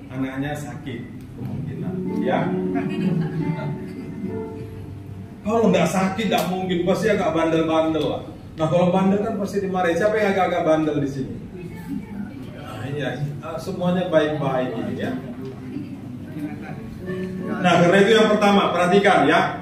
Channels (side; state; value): both; identical; correlation 1.00